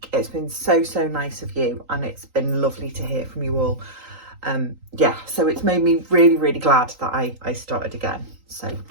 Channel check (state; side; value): late; left; 3.8 ms